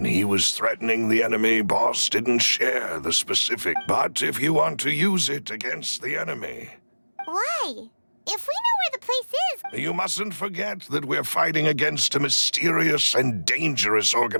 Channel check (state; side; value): inverted; both; correlation -1.00